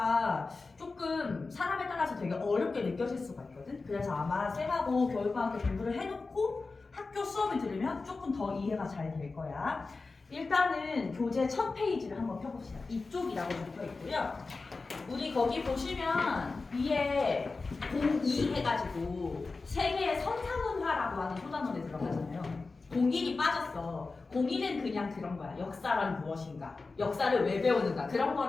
조금 사람에 따라서 되게 어렵게 느껴질 수가 있거든. 그래서 아마 쌤하고 교육과학교 공부를 해놓고 학교 수업을 들으면 조금 더 이해가 잘 될 거야. 일단은 교재 첫 페이지를 한번 펴봅시다. 이쪽이라고 적혀 있고요. 우리 거기 보시면 위에 02 해가지고 세계의 선사문화라고 하는 소단원에 들어가잖아요. 01이 빠졌어. 01은 그냥 그런 거야. 역사란 무엇인가, 역사를 왜 배우는가 그런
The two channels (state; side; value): quieter; right; 3.9 dB